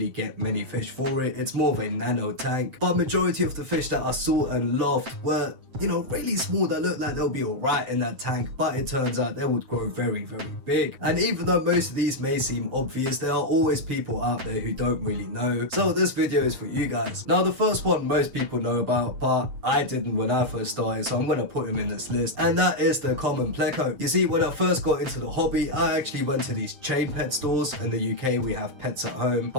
get many fish for it. It's more of a nano tank, but majority of the fish that I saw and loved were, you know, really small that looked like they'll be alright in that tank, but it turns out they would grow very big. And even though most of these may seem obvious, there are always people out there who don't really know. So this video is for you guys. Now the first one most people know about, but I didn't when I first started, so I'm gonna put him in this list, and that is the common pleco. You see, when I first got into the hobby, I actually went to these chain pet stores. In the UK we have Pets at Home, but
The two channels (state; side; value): late; left; 7.6 ms